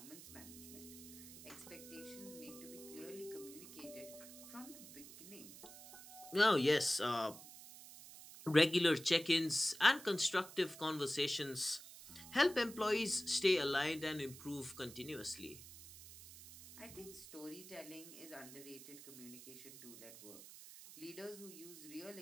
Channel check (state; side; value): noise; right; hiss, 15 dB below the sound